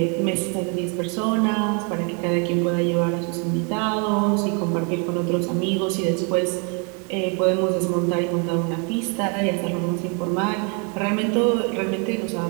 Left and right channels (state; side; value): quieter; left; 36.1 dB